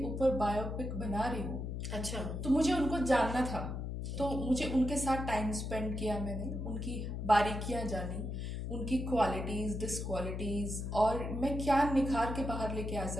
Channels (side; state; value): left; noise; hum, 4 dB below the sound